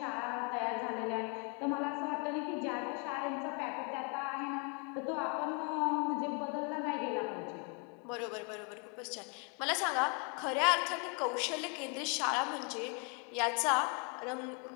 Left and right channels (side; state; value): right; quieter; 36.0 dB